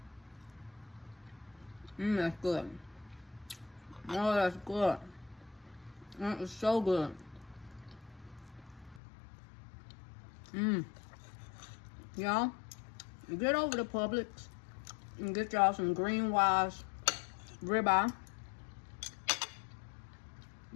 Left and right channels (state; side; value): drops out; right; at 9.0 s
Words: That's good. Oh, that's good. That is so good. Y'all, get over to Publix and get y'all some Green Wise ribeye.